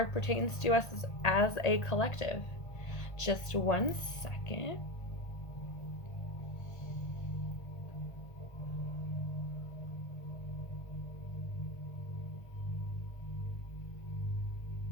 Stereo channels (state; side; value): late; right; 1.5 ms